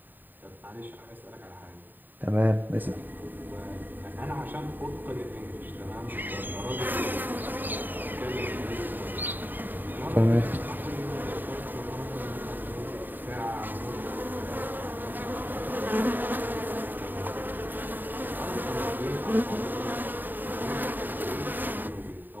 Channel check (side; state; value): left; late; 0.090 ms